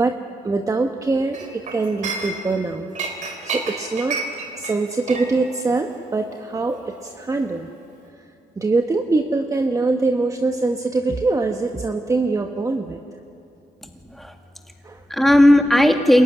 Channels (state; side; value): normal; both; correlation 0.86